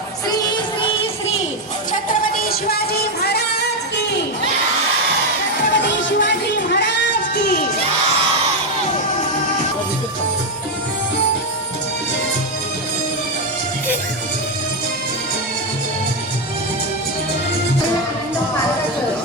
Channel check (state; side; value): normal; both; correlation 0.06